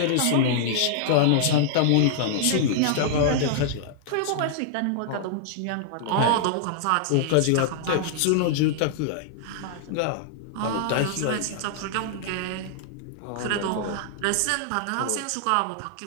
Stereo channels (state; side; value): different; both; correlation -0.01